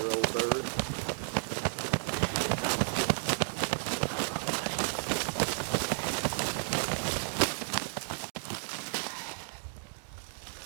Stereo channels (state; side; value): silent; left; digital silence